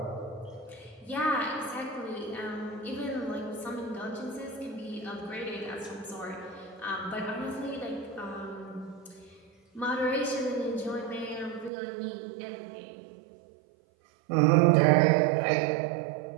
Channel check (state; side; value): drops out; left; at 11.7 s